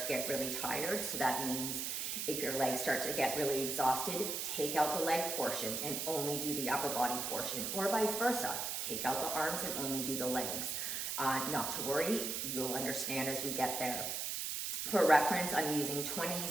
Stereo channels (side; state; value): right; noise; hiss, 2 dB below the sound